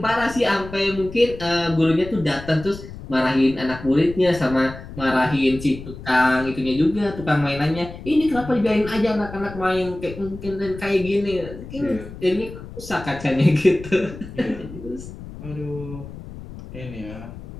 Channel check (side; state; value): left; noise; rumble, 13 dB below the sound